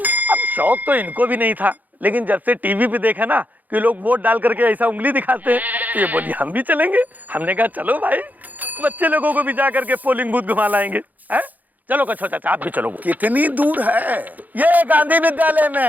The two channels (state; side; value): late; left; 0.082 ms